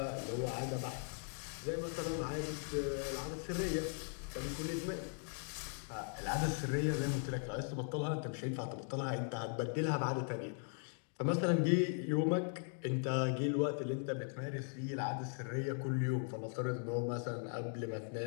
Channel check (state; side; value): silent; right; 52 dB below the other